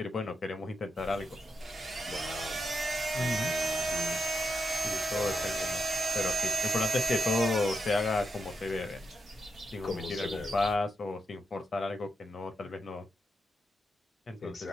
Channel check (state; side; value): normal; both; correlation 0.85